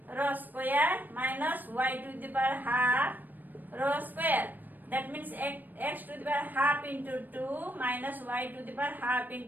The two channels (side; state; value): left; late; 0.088 ms